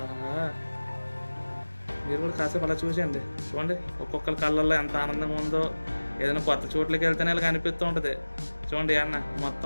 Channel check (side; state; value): both; inverted; correlation -1.00